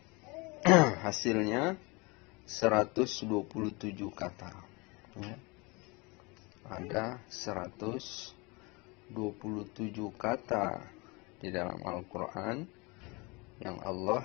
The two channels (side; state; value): right; quieter; 27.2 dB